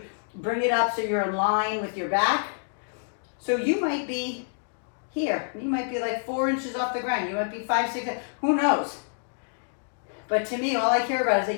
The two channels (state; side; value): silent; right; digital silence